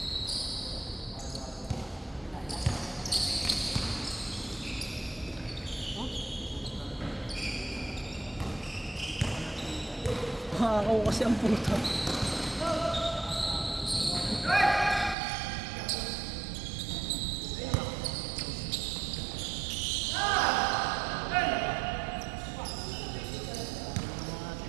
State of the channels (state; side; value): drops out; left; at 15.2 s